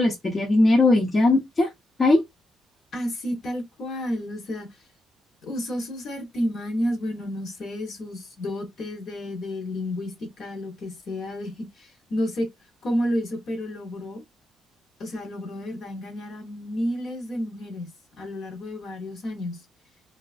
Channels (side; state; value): both; normal; correlation 0.86